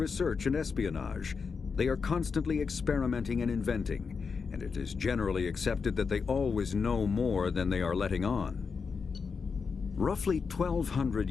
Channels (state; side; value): quieter; right; 5.4 dB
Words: and espionage. They are constantly experimenting and inventing, and it is generally accepted that they always know more than they are letting on. Roughly 1,200